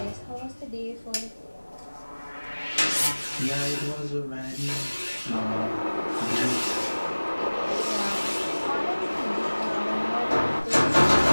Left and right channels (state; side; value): inverted; both; correlation -1.00